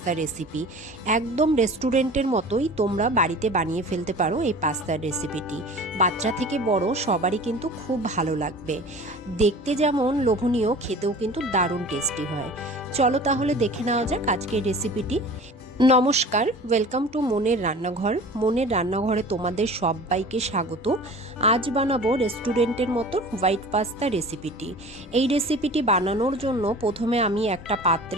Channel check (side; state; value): both; normal; correlation 0.41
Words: রেসিপি। একদম রেস্টুরেন্টের মতোই তোমরা বাড়িতে বানিয়ে ফেলতে পারো এই পাস্তার রেসিপিটি। বাচ্চা থেকে বড় সবারই কিন্তু খুব ভালো লাগবে। দেখতে যেমন লোভনীয়, খেতেও কিন্তু দারুণ টেস্টি হয়। চলো তাহলে দেখে নেওয়া যাক আজকের রেসিপিটি। নমস্কার, ওয়েলকাম টু মনের রান্নাঘর। মনের রান্নাঘরে তোমাদের সবাইকে স্বাগত। আজ বানাবো রেস্টুরেন্টের মতো হোয়াইট পাস্তা রেসিপিটি। এই রেসিপিটি বানানোর জন্য প্রথমে আমি একটা